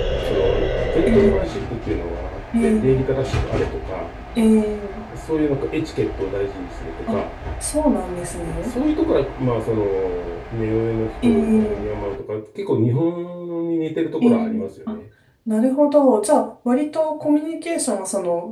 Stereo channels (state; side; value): identical; both; correlation 1.00